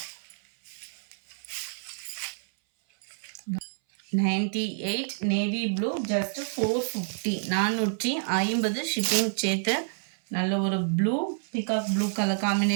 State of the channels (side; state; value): left; silent; 59 dB below the other